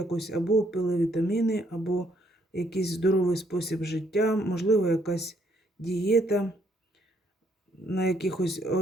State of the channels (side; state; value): both; normal; correlation 0.70